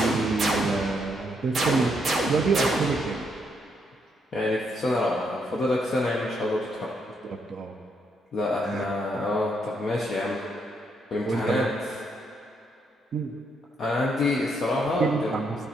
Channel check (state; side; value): normal; both; correlation 0.75